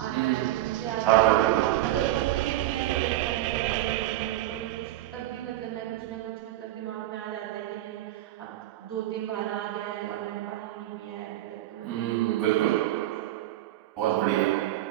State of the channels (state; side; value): quieter; left; 14.8 dB